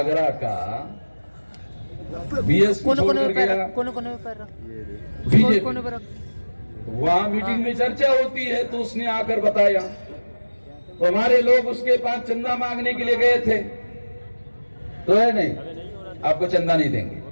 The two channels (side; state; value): both; inverted; correlation -1.00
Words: का बीएसपी छोड़कर गया, बीजेपी वहाँ मीटिंग में चर्चा होती है तो उसने आकर बताया, तो हमारे लोग उसके पास चंदा मांगने के लिए गए थे, तो है नहीं आपको चंदा नहीं देंगे।